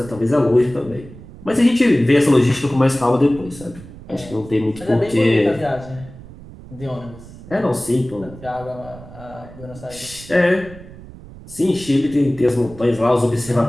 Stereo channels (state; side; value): noise; right; rumble, 17 dB below the sound